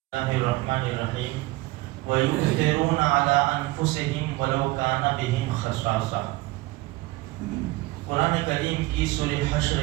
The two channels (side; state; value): left; quieter; 20.2 dB